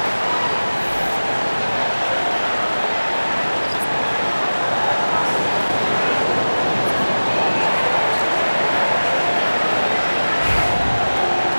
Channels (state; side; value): inverted; both; correlation -1.00